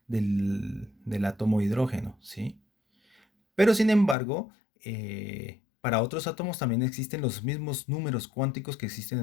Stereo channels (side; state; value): right; drops out; at 4.2 s